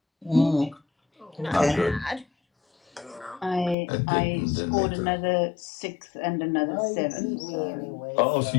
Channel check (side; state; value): right; drops out; at 3.8 s